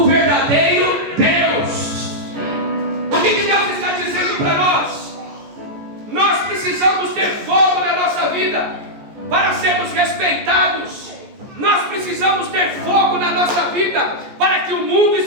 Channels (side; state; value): left; late; 14 ms